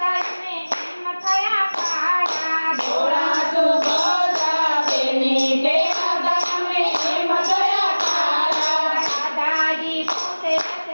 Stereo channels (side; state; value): both; inverted; correlation -1.00